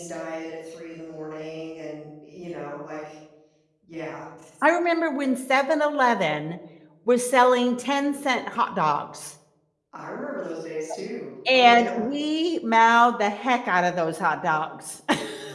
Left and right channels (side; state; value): both; identical; correlation 1.00